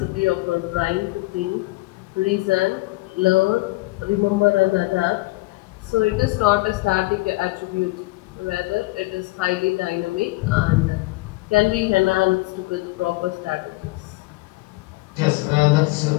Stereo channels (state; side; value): quieter; right; 22.0 dB